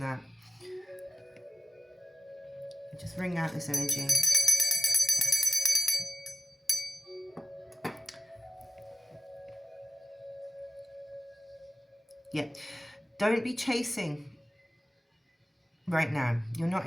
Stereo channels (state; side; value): normal; both; correlation 0.96